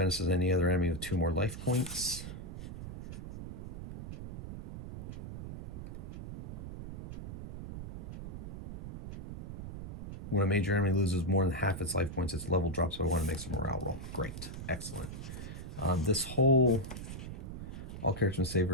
and any other enemy with 2 more life points. When a major enemy loses more than half its life points, its level drops by 1 and makes a morale roll. Great. Excellent. This whole... All characters must save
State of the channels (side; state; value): right; noise; rumble, 9 dB below the sound